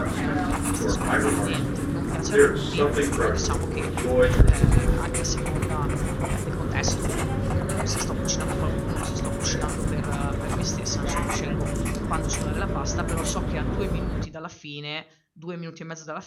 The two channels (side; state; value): both; identical; correlation 1.00